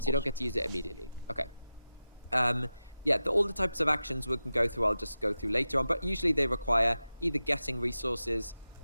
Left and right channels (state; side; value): inverted; both; correlation -0.93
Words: you don't get to use it immediately. Okay. All the types of actions we can go through, I'll just go through later on, but usually they require either getting resources